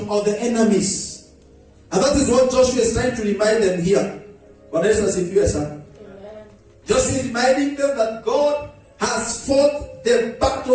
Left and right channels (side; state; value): both; identical; correlation 1.00